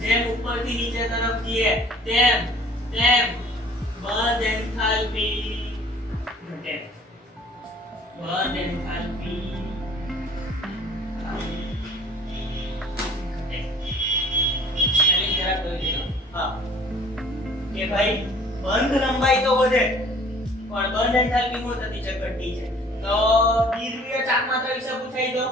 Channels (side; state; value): both; normal; correlation 0.52